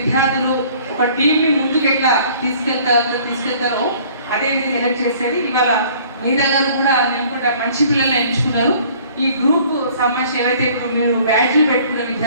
ఒక టీంని ముందుకు ఎట్లా తీసుకెళ్తారో అదే విధంగా ఎలక్ట్ చేసేది. ఇవాళ మీ దగ్గర కూడా నేను కూడా మంచి పిల్లల్ని ఎంచుకున్నారు. ఈ గ్రూప్ సంబంధించి ఏవైతే ఇప్పుడు మీరు బ్యాడ్జ్లు పెట్టుకున్న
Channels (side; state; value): both; inverted; correlation -0.54